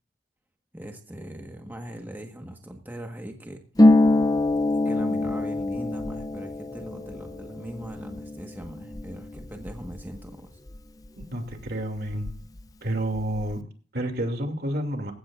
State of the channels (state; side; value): normal; both; correlation 0.86